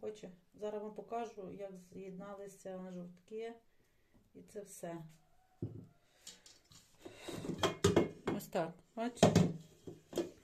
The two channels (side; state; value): both; identical; correlation 1.00